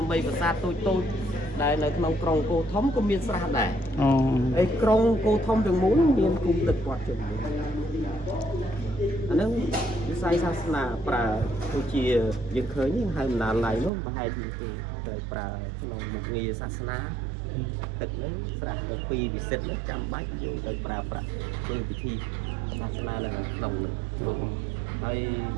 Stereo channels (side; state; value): left; drops out; at 13.9 s